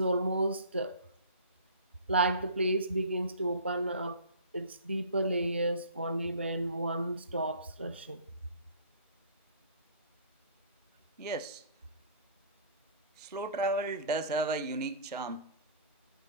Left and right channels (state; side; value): inverted; both; correlation -0.47